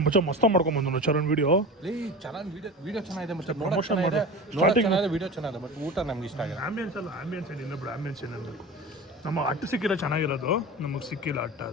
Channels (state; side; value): normal; both; correlation 0.32